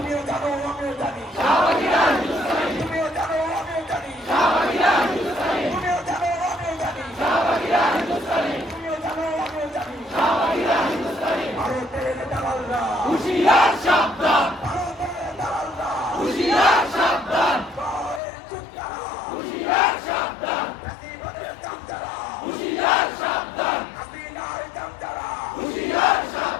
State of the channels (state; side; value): drops out; right; at 18.2 s